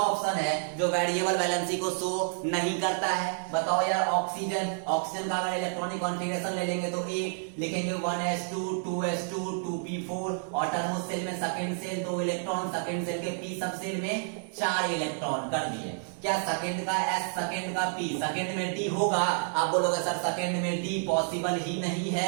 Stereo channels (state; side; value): silent; left; 58 dB below the other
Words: ऑप्शन है जो वेरिएबल वैलेंसी को शो नहीं करता है, बताओ यार। ऑक्सीजन, ऑक्सीजन का अगर इलेक्ट्रॉनिक कॉन्फ़िगरेशन ले लेंगे तो 1 लिखेंगे, 1s2 2s2 2p4। ऑटोनोमस सेल में second shell 2 electron, second shell के p सब सेल में 4 इलेक्ट्रॉन कर दिए। क्या सेकंड का s, सेकंड का p, सेकंड में d होगा, आप बोलोगे सर सेकंड में d पॉसिबल ही नहीं